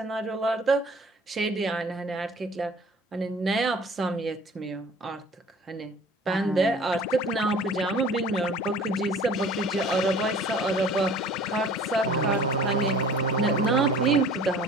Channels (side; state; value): both; normal; correlation 0.47